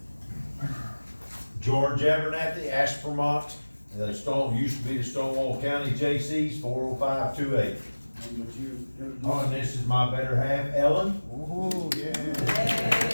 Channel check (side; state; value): both; inverted; correlation -1.00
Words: George Abernathy, Ashburmont, used to be the Stonewall County JCs, 40528. And would you introduce? Oh, and this is my better half, Ellen. Oh, yeah.